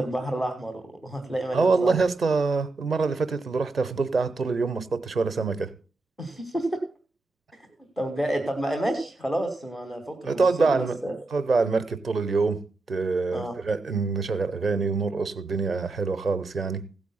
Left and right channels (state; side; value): quieter; left; 3.3 dB